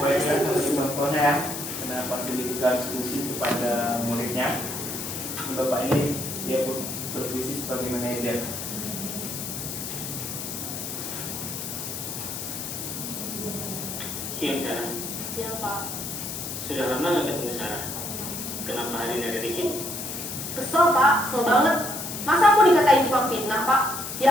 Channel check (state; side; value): noise; left; hiss, 6 dB below the sound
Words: restitusi. Contohnya, penerapan segitiga restitusi kepada muridnya. Bapak ini dia berfungsi sebagai manajer. Siang Sarah. Siap, Pak. Sudah lama nggak ketemu Sarah. Kenapa hari ini ada di sini? Kesel Pak, kesel banget. Masa aku dikatain tukang fitnah Pak?